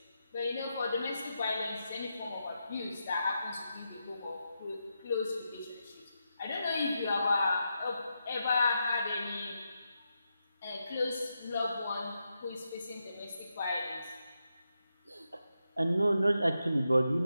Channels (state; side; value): inverted; both; correlation -0.86